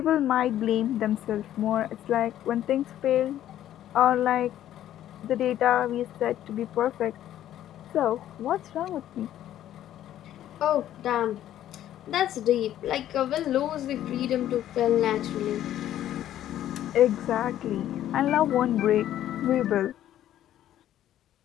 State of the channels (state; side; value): quieter; right; 12.1 dB